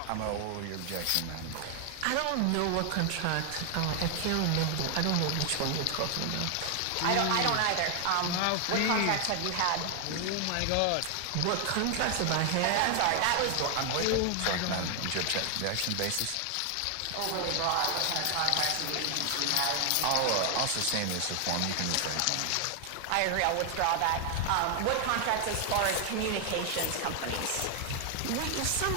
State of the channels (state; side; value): different; both; correlation 0.00